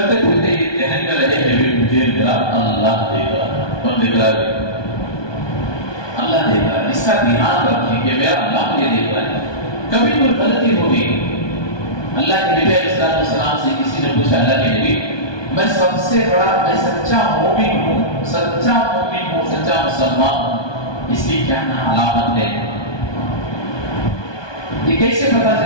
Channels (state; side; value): late; right; 1.2 ms